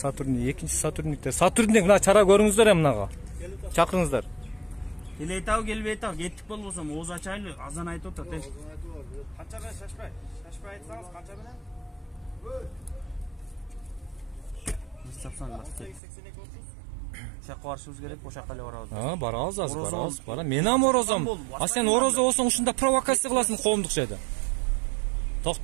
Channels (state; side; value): drops out; left; at 16.0 s